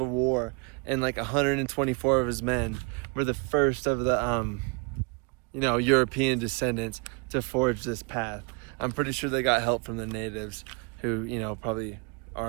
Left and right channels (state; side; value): quieter; left; 32.1 dB